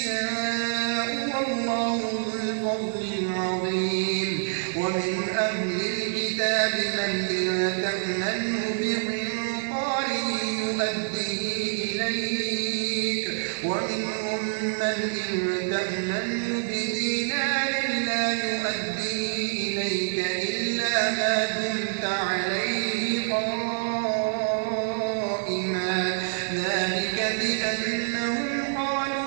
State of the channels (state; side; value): silent; left; digital silence